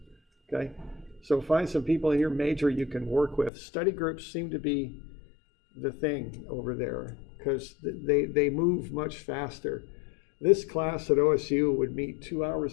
okay? So find some people in your major you can work with. Study groups seem to be the thing over there because they move much faster. This class at OSU would meet 2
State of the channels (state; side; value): drops out; right; at 3.5 s